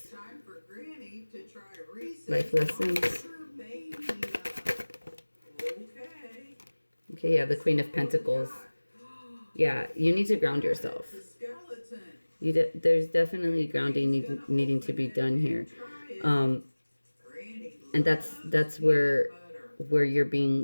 Time for Granny to try Life lessons. Okay. Okay, yeah, the Queen of Pentacles. Yeah, you need to ground yourself. There's definitely grounding needing to be done here. And that's where you're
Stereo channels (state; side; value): inverted; both; correlation -1.00